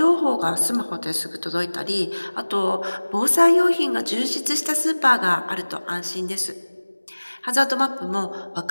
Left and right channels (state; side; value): inverted; both; correlation -1.00